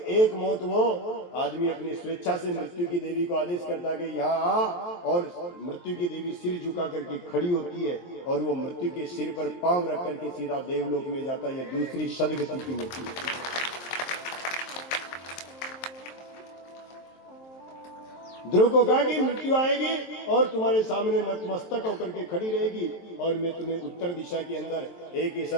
मौत वो आदमी अपनी स्वेच्छा से मृत्यु की देवी को आदेश करता कि यहाँ आ, और मृत्यु की देवी सिर झुका करके खड़ी होती है, और वो मृत्यु के सिर पर पांव रख करके सीधा देवलोक में जाता है। ये दूसरी सदगति की मृत्यु है। ध्रुव को कहा कि मृत्यु आएगी और तुम्हारे सामने नतमस्तक होकर के खड़ी रहेगी, और मैं तुम्हें उत्तर दिशा के अंदर एक ऐसा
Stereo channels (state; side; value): late; right; 23 ms